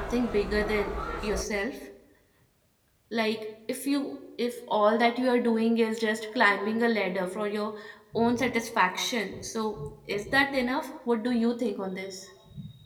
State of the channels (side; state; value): both; identical; correlation 1.00